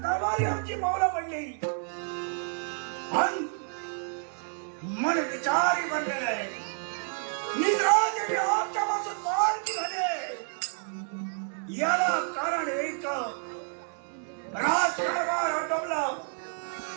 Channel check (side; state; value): left; silent; 56 dB below the other